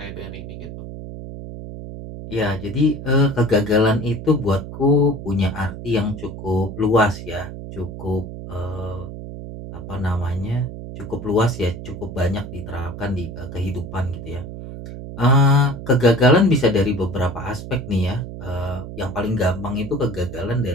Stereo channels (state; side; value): noise; right; hum, 10 dB below the sound